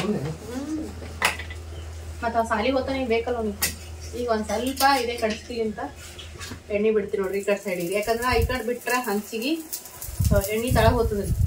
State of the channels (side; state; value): both; identical; correlation 1.00